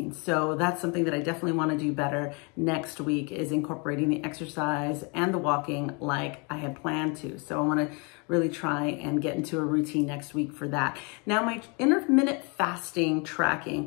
So that's something that I definitely want to do better next week, is incorporating the exercise and the walking like I had planned to. So I want to really try and get into a routine next week for that. Now, my intermittent fasting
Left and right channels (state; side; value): quieter; right; 32.1 dB